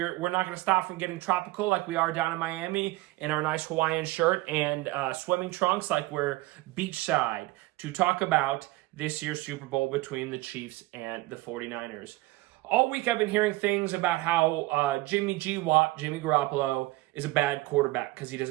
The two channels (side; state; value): left; quieter; 19.8 dB